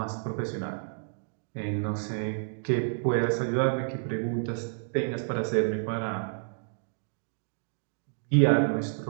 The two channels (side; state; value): left; silent; digital silence